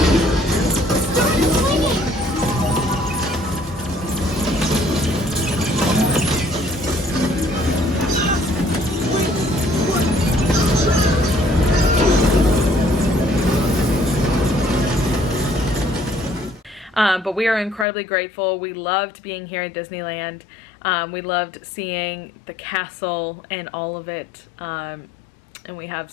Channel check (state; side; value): drops out; right; at 17.9 s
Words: But we are incredibly grateful. We loved being here at Disneyland. We loved seeing the castle and all of it. And we have